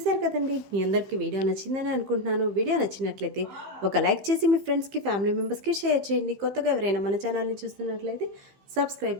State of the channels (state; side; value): late; left; 15 ms